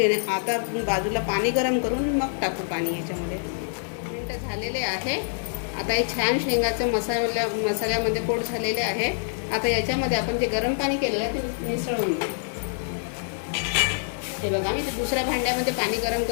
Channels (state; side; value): silent; right; 61 dB below the other